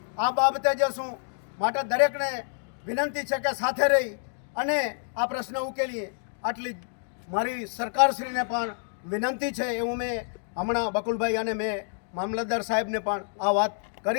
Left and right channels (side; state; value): right; silent; digital silence